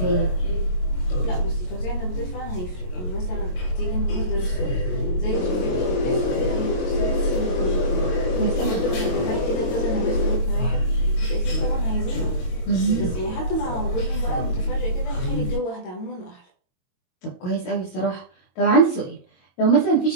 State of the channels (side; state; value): right; late; 22 ms